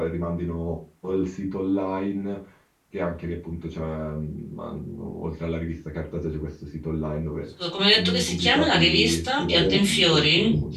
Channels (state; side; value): identical; both; correlation 1.00